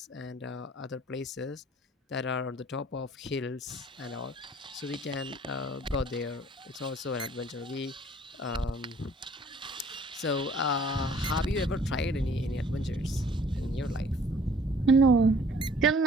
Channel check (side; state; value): both; normal; correlation 0.55